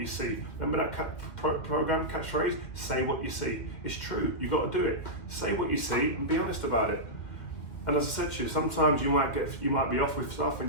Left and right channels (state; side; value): late; right; 2.1 ms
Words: see. Remember that program catchphrase? Say what you see. It's true. You got to do it. Say what you see and be honest about it. And as I said to you, sometimes you might be off with stuff, and